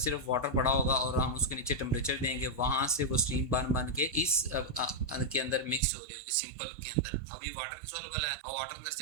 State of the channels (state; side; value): drops out; left; at 5.9 s